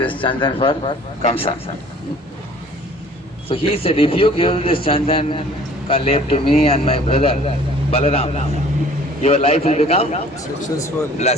chandan for Kamsa. So he said, if you give this chandan kalep to me and my brother Balaram, your life will become Successful.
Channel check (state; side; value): normal; both; correlation 0.51